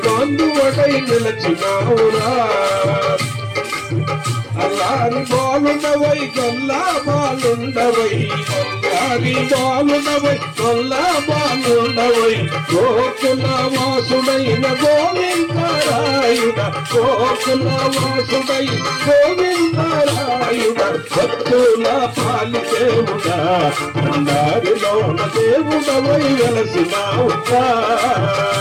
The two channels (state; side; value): identical; both; correlation 1.00